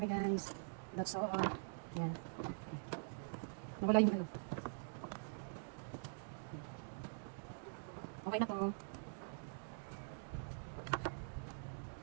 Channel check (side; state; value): left; silent; digital silence